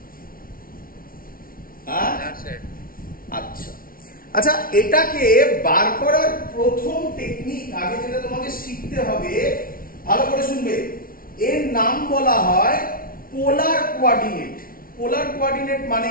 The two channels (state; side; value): late; right; 0.42 ms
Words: আচ্ছা আচ্ছা, এটাকে বার করার প্রথম টেকনিক আগে যেটা তোমাকে শিখতে হবে, ভালো করে শুনবে, এর নাম বলা হয় পোলার কোঅর্ডিনেট। পোলার কোঅর্ডিনেট মানে